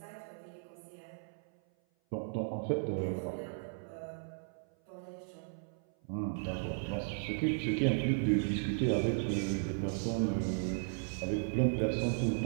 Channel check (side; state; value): left; silent; 54 dB below the other